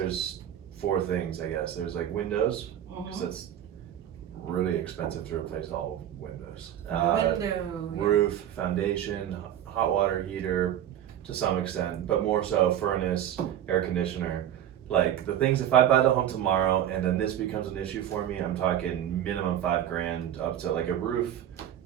4 things I guess. There's like windows, because that's really expensive to replace all windows. Roof, foundation, hot water heater, to some extent, but more so furnace, air conditioner. Like the things, if I buy the home tomorrow and then this becomes an issue for me, I'm talking minimum $5,000 up to like a roof.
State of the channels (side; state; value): left; quieter; 10.9 dB